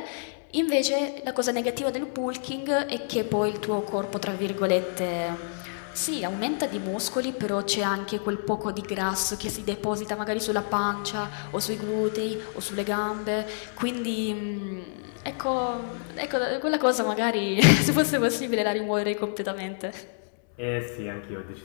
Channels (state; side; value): silent; right; 60 dB below the other